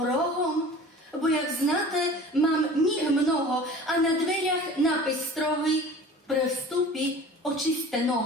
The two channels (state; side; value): normal; both; correlation 0.42